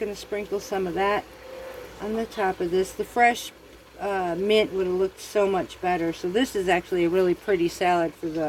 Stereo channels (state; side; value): identical; both; correlation 1.00